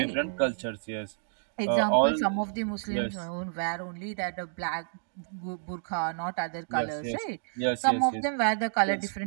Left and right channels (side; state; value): left; silent; digital silence